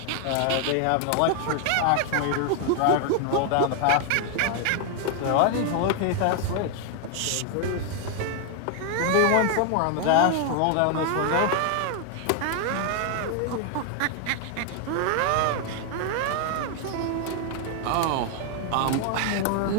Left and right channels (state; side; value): different; both; correlation 0.00